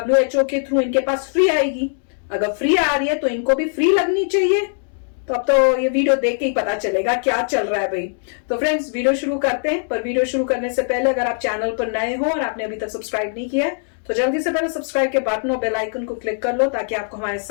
के थ्रू इनके पास फ्री आएगी। अगर फ्री आ रही है तो इनको भी फ्री लगनी चाहिए। तो अब तो ये वीडियो देख के ही पता चलेगा क्या चल रहा है भाई। तो फ्रेंड्स, वीडियो शुरू करते हैं। पर वीडियो शुरू करने से पहले अगर आप चैनल पर नए हो और आपने अभी तक सब्सक्राइब नहीं किया है तो जल्दी से पहले सब्सक्राइब के बटन और बेल आइकन को क्लिक कर लो ताकि आपको हमारे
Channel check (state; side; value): silent; right; digital silence